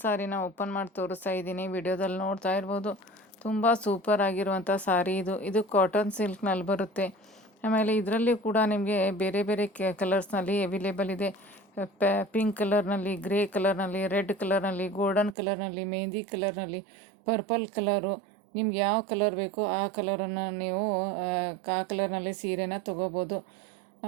ಸಾರಿನ ಓಪನ್ ಮಾಡಿ ತೋರಿಸ್ತಾ ಇದ್ದೀನಿ, ವಿಡಿಯೋದಲ್ಲಿ ನೋಡ್ತಾ ಇರ್ಬೋದು. ತುಂಬ ಸೂಪರ್ ಆಗಿರುವಂಥ ಸಾರಿ ಇದು. ಇದು ಕಾಟನ್ ಸಿಲ್ಕ್ನಲ್ಲಿ ಬರುತ್ತೆ. ಆಮೇಲೆ ಇದರಲ್ಲಿ ಕೂಡ ನಿಮಗೆ ಬೇರೆ ಬೇರೆ ಕಲರ್ಸ್ನಲ್ಲಿ ಅವೈಲೇಬಲ್ ಇದೆ. ಪಿಂಕ್ ಕಲರ್ನಲ್ಲಿ, ಗ್ರೇ ಕಲರ್ನಲ್ಲಿ, ರೆಡ್ ಕಲರ್ನಲ್ಲಿ, ಗೋಲ್ಡನ್ ಕಲರ್ನಲ್ಲಿ, ಮೆಹಂದಿ ಕಲರ್ನಲ್ಲಿ, ಪರ್ಪಲ್ ಕಲರು. ನಿಮ್ಗೆ ಯಾವ ಕಲರ್ ಬೇಕೋ ಆ ಕಲರನ್ನು ನೀವು ಆ ಕಲರ್ನಲ್ಲಿ ಸೀರೆನ ತೊಗೋಬೋದು.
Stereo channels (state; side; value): drops out; left; at 15.4 s